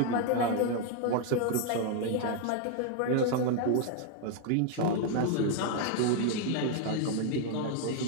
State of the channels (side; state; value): both; different; correlation 0.01